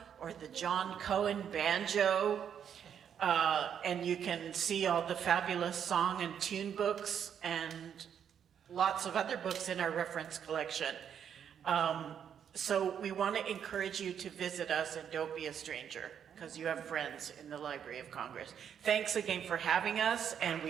or the John Cohen banjo. And you can see all the fabulous song and tune books and lots of other books in our reference collection. So we want to encourage you to visit us and don't be a stranger, because you have friends in the Library of Congress. Thanks again for having us, and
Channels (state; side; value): quieter; left; 8.4 dB